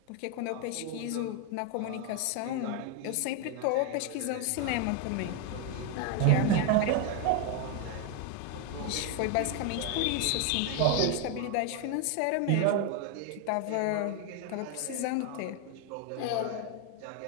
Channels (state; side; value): different; both; correlation 0.01